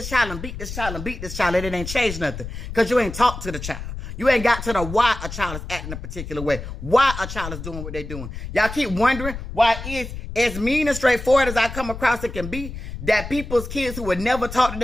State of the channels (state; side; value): noise; left; rumble, 9 dB below the sound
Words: child and beat this child and beat this child, and it ain't changed nothing. Because you ain't talked to the child. You ain't got to the why a child is acting a particular way. Why a child is doing what they're doing. Y'all keep wondering why it's as mean and straightforward as I come across it can be, that people's kids who would never talk to